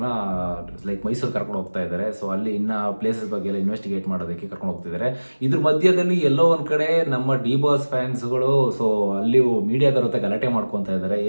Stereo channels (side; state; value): both; inverted; correlation -1.00